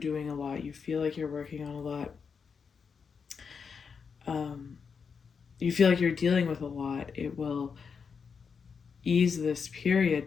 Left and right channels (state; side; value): quieter; right; 5.9 dB